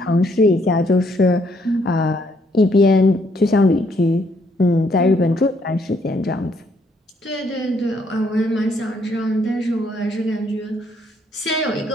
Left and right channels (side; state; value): both; normal; correlation 0.70